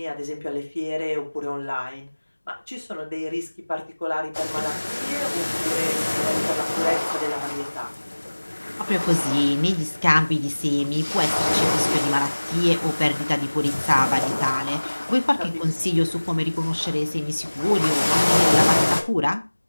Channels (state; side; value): inverted; both; correlation -1.00